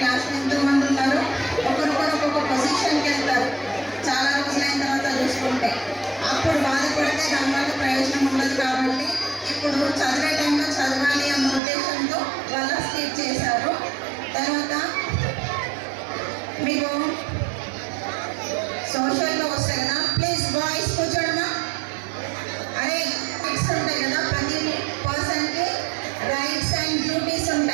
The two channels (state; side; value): drops out; left; at 11.6 s